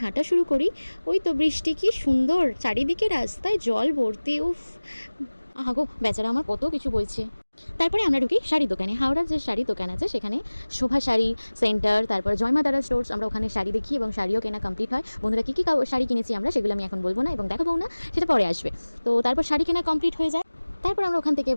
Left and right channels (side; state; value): both; inverted; correlation -1.00